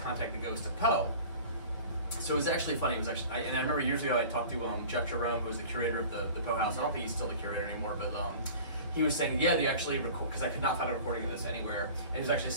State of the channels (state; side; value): inverted; both; correlation -0.41